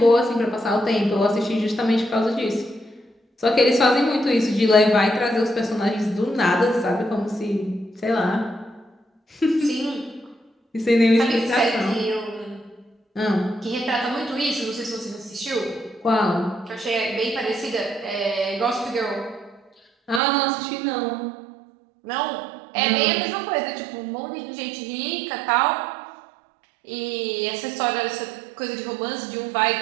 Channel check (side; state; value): left; drops out; at 20.2 s